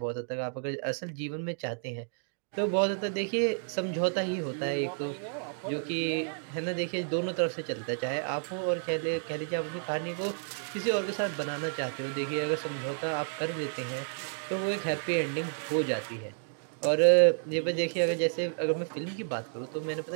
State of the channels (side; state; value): left; silent; digital silence